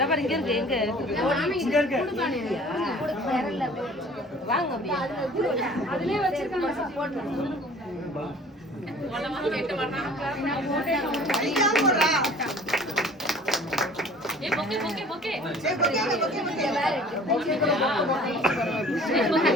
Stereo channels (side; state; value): both; normal; correlation 0.49